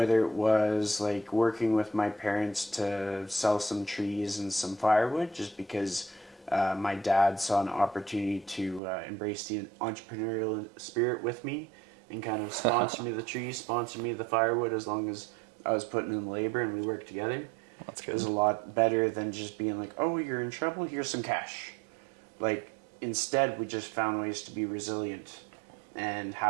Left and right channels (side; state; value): left; drops out; at 8.8 s